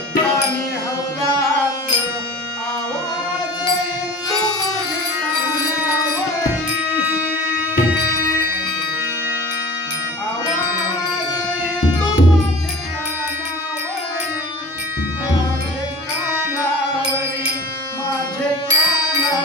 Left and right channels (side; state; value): both; normal; correlation 0.40